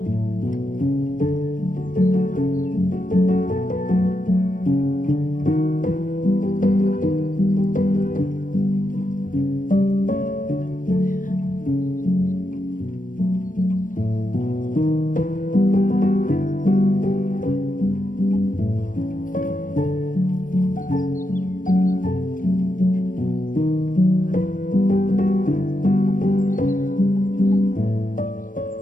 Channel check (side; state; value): right; late; 0.38 ms